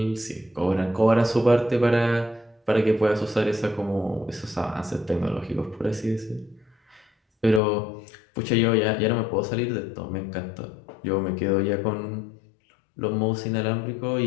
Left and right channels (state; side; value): drops out; right; at 7.6 s